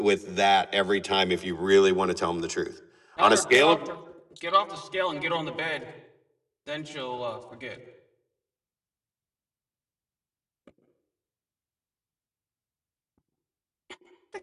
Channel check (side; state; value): both; identical; correlation 1.00